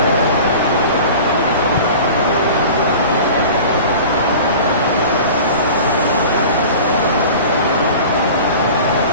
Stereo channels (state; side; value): inverted; both; correlation -0.38